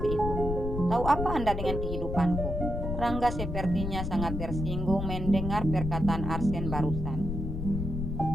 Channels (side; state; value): left; noise; rumble, 4 dB below the sound